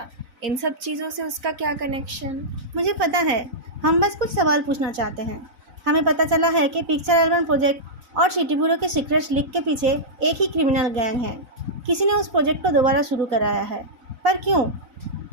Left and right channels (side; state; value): left; late; 4.0 ms